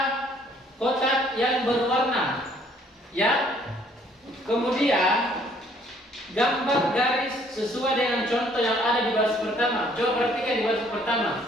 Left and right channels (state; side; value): normal; both; correlation 0.62